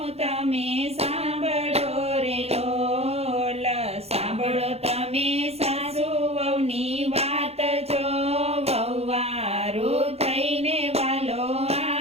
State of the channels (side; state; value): left; late; 0.30 ms